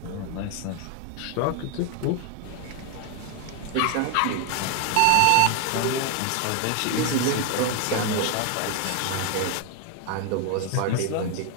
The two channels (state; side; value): different; both; correlation 0.00